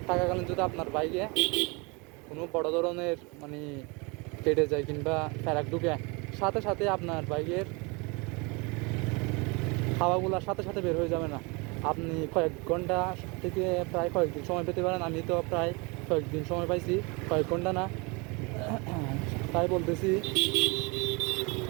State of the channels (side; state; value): left; quieter; 28.7 dB